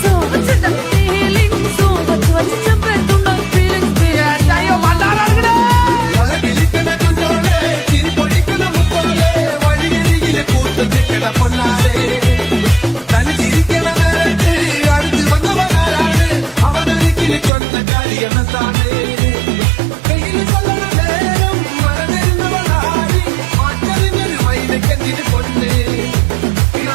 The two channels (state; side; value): drops out; left; at 17.5 s